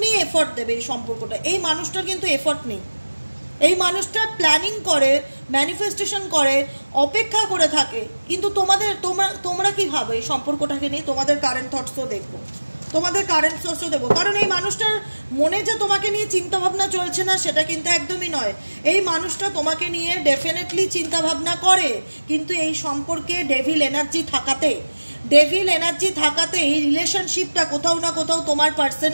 এফর্ট দেবে এই সম্পর্কটা। এই মানুষটার কিন্তু এফর্ট নেই, এই মানুষটা প্ল্যানিং করে, ম্যানিফেস্টেশন করে, অপেক্ষা করে থাকে, কিন্তু তোমরা কি ভাবে এই সম্পর্কটাকে নিয়ে? তোমাদের কারেন্ট থটসও দেখবো, তোমাদের কারেন্ট সোর্সও দেবো, কারণ এই মানুষটার মনে যে তোমাকে নিয়ে চিন্তাভাবনা চলছে না সেটা কিন্তু একদমই নয়। এই মানুষটা তোমাকে নিয়ে ডেফিনেটলি চিন্তাভাবনা করে, কিন্তু এই সম্পর্কে ডেভিল এনার্জি থাকাতে এই রিলেশনশিপটা কোথাও না কোথাও তোমার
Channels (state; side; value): inverted; both; correlation -1.00